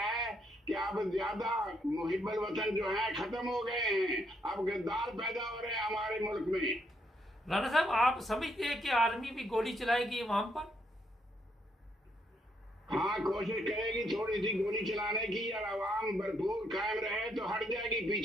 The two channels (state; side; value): normal; both; correlation 0.74